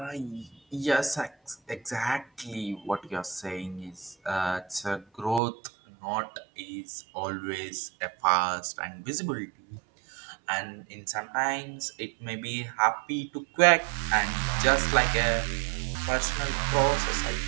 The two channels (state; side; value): drops out; left; at 5.4 s